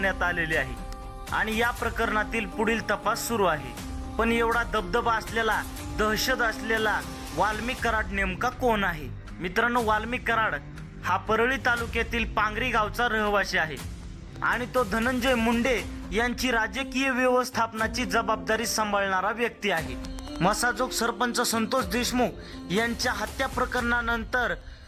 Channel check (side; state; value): both; identical; correlation 1.00